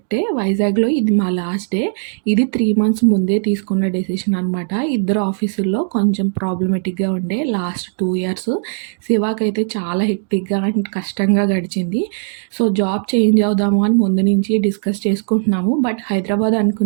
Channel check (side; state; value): left; silent; digital silence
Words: వైజాగ్లో ఇది మా లాస్ట్ డే. ఇది 3 months ముందే తీసుకున్న డెసిషన్ అనమాట. ఇద్దరు ఆఫీసుల్లో కొంచెం ప్రాబ్లమేటిక్గా ఉండే లాస్ట్ 2 years. శివాకైతే చాలా హెక్టిక్గా అండ్ కష్టంగా గడిచింది. సో జాబ్ చేంజ్ అవుదాము అని ముందు నుంచి డిస్కస్ చేసుకుంటున్నాము. బట్ హైదరాబాద్